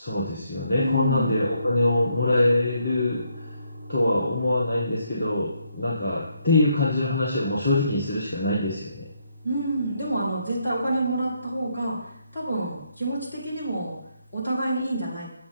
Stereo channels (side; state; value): both; inverted; correlation -0.74